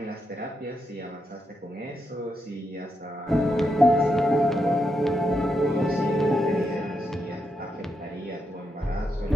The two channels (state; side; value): normal; both; correlation 0.83